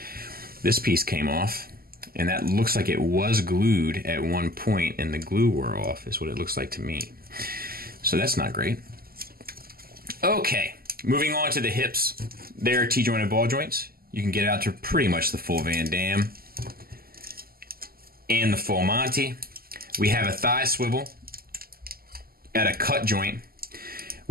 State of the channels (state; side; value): late; left; 0.43 ms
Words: This piece came off, and that looks like it was glued at one point, and the glue wore off, is what it looks like to me. So that's not great. Okay, moving on to the hips. They're T-jointed ball joints. You can get out to pretty much the full Van Damme and the full Monty. We have a thigh swivel at a cut joint,